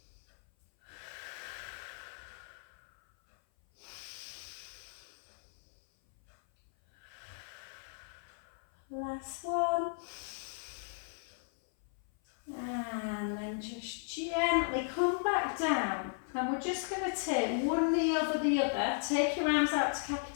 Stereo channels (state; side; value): silent; right; 54 dB below the other